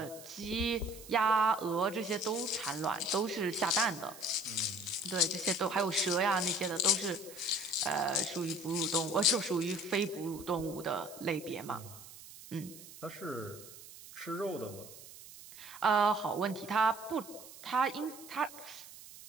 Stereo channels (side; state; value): right; noise; hiss, 17 dB below the sound